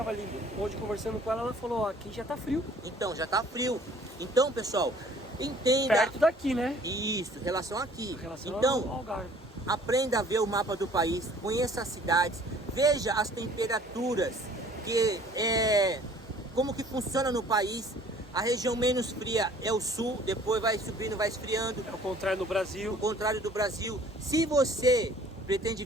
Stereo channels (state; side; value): normal; both; correlation 0.54